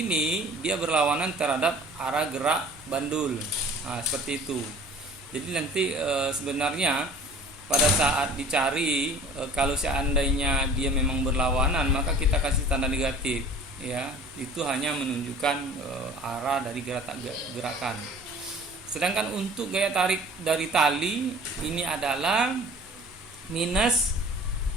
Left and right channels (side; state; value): both; normal; correlation 0.47